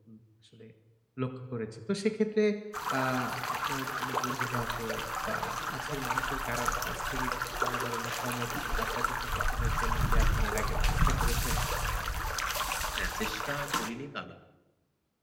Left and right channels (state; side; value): identical; both; correlation 1.00